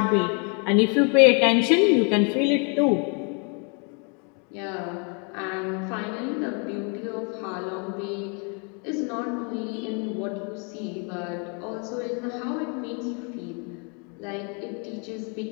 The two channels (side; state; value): right; quieter; 36.0 dB